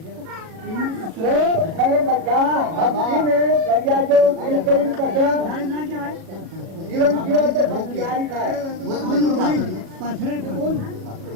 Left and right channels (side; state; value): left; late; 37 ms